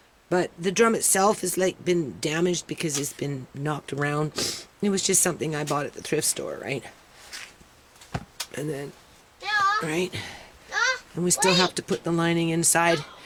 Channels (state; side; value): identical; both; correlation 1.00